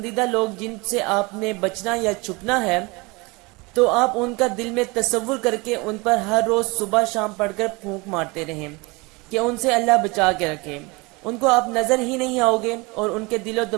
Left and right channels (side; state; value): left; quieter; 26.0 dB